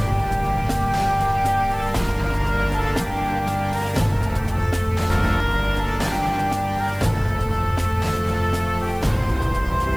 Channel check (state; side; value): noise; right; hiss, 23 dB below the sound